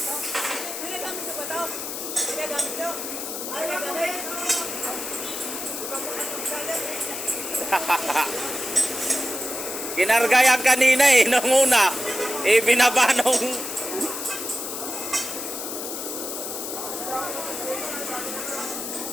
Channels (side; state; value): left; noise; hiss, 6 dB below the sound